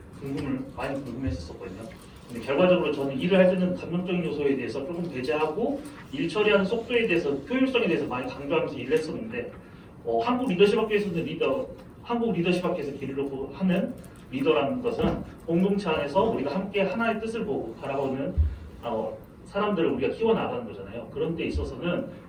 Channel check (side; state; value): both; identical; correlation 1.00